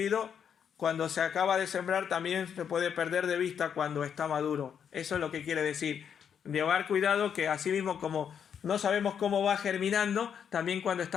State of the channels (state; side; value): quieter; right; 7.9 dB